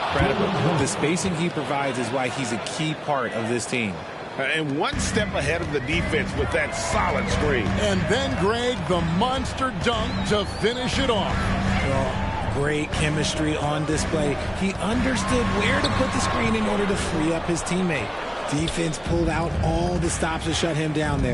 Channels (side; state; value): both; identical; correlation 1.00